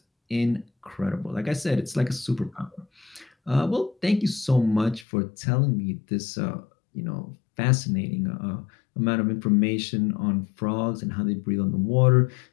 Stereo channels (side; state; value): right; drops out; at 5.1 s